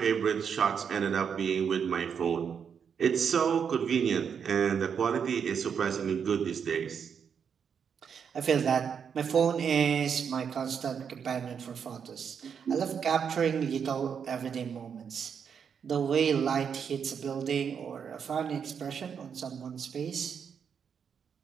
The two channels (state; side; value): quieter; left; 7.1 dB